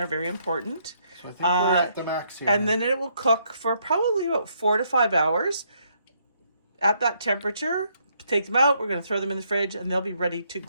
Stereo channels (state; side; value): inverted; both; correlation -0.72